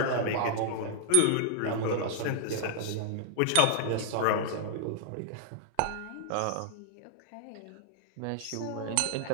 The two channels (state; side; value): different; both; correlation -0.01